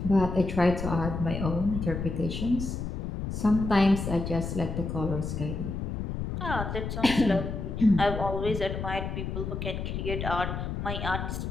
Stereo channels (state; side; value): noise; left; rumble, 4 dB below the sound